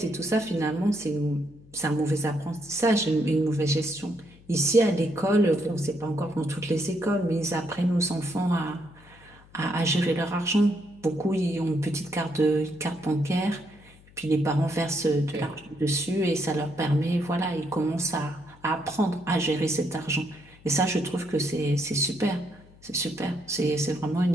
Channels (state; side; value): noise; left; hum, 25 dB below the sound